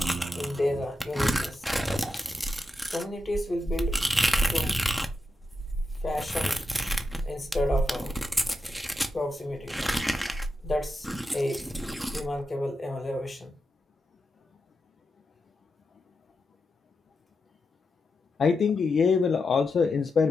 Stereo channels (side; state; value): both; normal; correlation 0.88